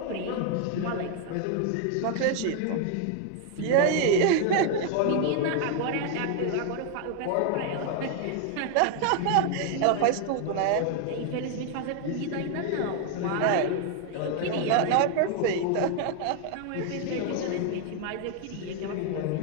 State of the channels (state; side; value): different; both; correlation 0.00